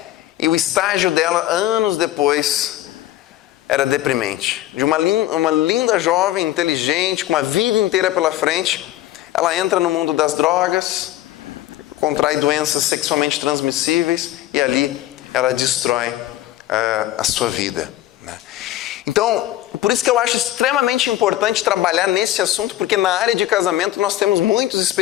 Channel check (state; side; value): quieter; right; 14.4 dB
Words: e o estágio dela, anos depois, era deprimente. De uma linda jovem, inteligente, com uma vida inteira pela frente, ela entra no mundo das drogas, contrai doenças sexualmente transmissíveis e ali ela destrói a sua vida, né? Então, por isso que eu acho extremamente importante trabalhar nesse assunto, porque na área de casamento nós temos muitos